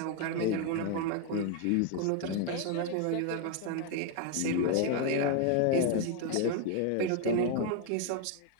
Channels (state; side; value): different; both; correlation 0.01